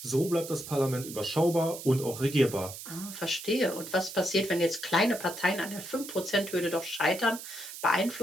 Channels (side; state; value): right; noise; hiss, 11 dB below the sound